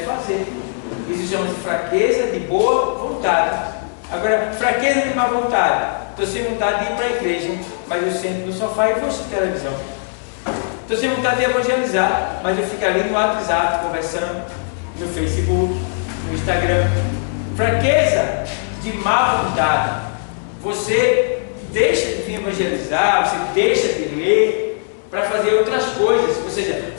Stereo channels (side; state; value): right; silent; digital silence